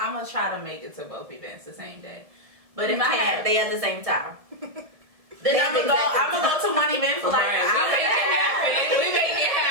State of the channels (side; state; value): left; late; 1.7 ms